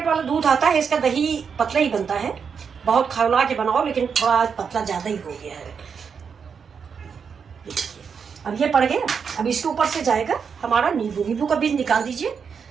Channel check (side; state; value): left; quieter; 6.4 dB